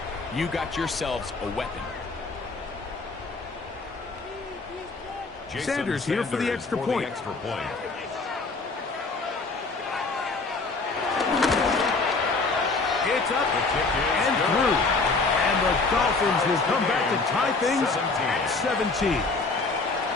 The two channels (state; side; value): quieter; right; 3.8 dB